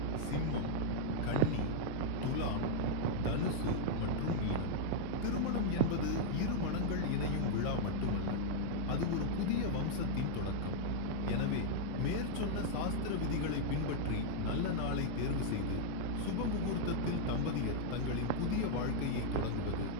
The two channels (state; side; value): different; both; correlation 0.00